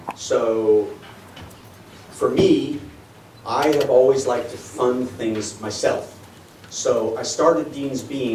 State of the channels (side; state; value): both; identical; correlation 1.00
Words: So for me, I have always liked to fund things myself. So I started Dean's